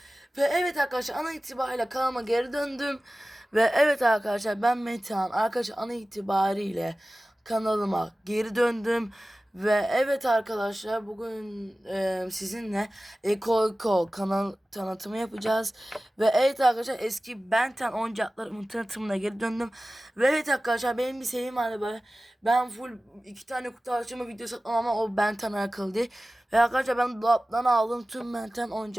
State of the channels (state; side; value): normal; both; correlation 0.96